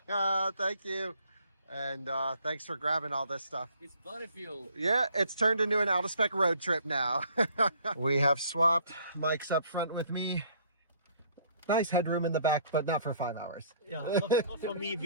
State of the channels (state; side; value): inverted; both; correlation -0.59